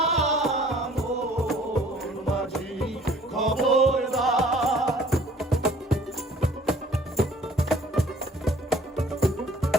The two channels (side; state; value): both; normal; correlation 0.54